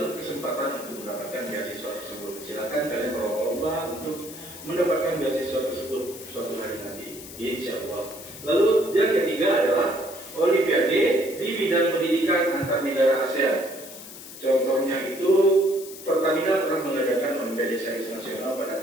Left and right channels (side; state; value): left; noise; hiss, 14 dB below the sound